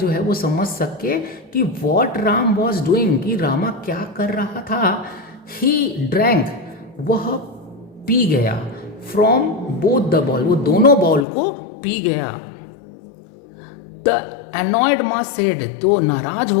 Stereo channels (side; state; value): right; drops out; at 11.2 s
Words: है वो समझ सके कि वॉट राम वॉज डूइंग, कि रामा क्या कर रहा था। ही ड्रैंक, वह पी गया, फ्रॉम बोथ द बॉल, वो दोनों बॉल को पी गया। द एनॉयड माँ सेड, तो नाराज